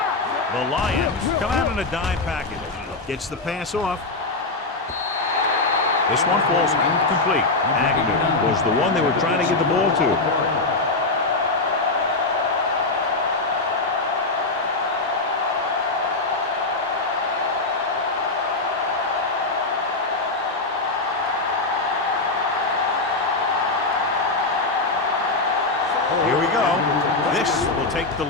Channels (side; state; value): right; quieter; 3.3 dB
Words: The Lions come out in a dime package. Gets the pass off. This one falls incomplete. Agnew was the one they were trying to get the ball to. Here we go. This will take the